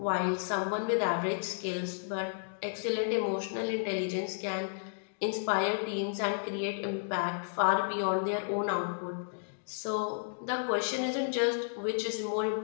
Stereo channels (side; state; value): right; silent; digital silence